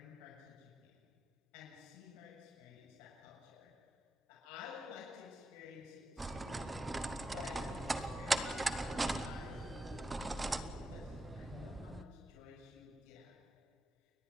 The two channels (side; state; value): both; normal; correlation 0.88